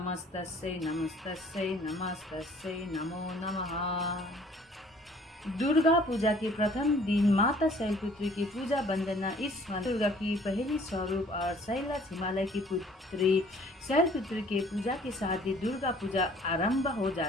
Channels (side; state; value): both; normal; correlation 0.55